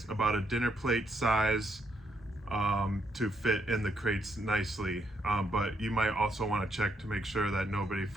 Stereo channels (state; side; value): normal; both; correlation 0.76